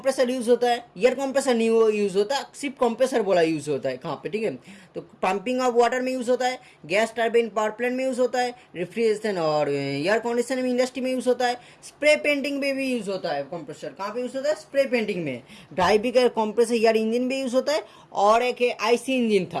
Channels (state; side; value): identical; both; correlation 1.00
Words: यूज होता है। एयर कंप्रेसर नहीं यूज होता, सिर्फ कंप्रेसर बोला यूज होता है। कहाँ पे? ठीक है, तो पंपिंग ऑफ वाटर में यूज होता है, गैस टर्बाइन पावर प्लांट में यूज होता है, रेफ्रिजरेशन और एयर कंडीशन में इंडस्ट्री में यूज होता है। स्प्रे पेंटिंग में भी यूज होता है कंप्रेसर। कहाँ पे यूज होता है? स्प्रे पेंटिंग में। ड्राइवी का कंप्रेसर एयर इंजन में यूज होता है, और एक आईसी इंजन